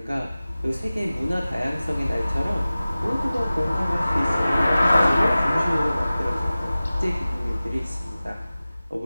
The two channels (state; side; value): inverted; both; correlation -0.97